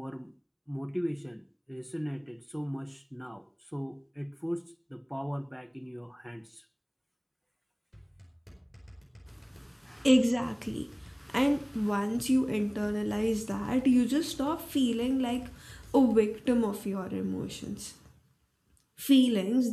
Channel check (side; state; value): both; identical; correlation 1.00